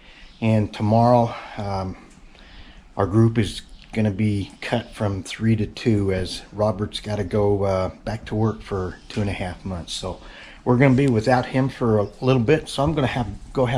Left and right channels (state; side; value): identical; both; correlation 1.00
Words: and tomorrow our group is going to be cut from 3 to 2 as Robert's got to go back to work for 2.5 months. So we're going to be without him for a little bit, so I'm going to go